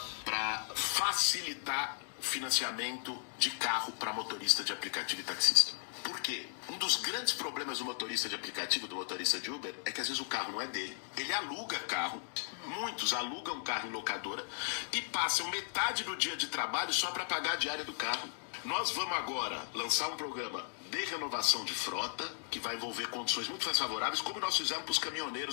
para facilitar o financiamento de carro para motorista de aplicativo e taxista. Por quê? Um dos grandes problemas do motorista de aplicativo, do motorista de Uber, é que às vezes o carro não é dele. Ele aluga carro, muitos alugam carro em locadora e passam metade do dia de trabalho só para pagar a diária do carro. Nós vamos agora lançar um programa de renovação de frota, que vai envolver condições muito mais favoráveis, como nós fizemos para os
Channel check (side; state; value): right; silent; 54 dB below the other